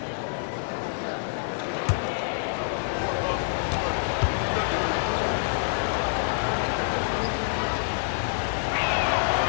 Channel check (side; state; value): right; silent; 60 dB below the other